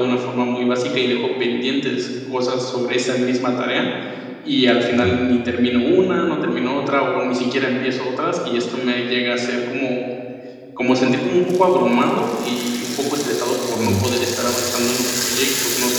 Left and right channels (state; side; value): identical; both; correlation 1.00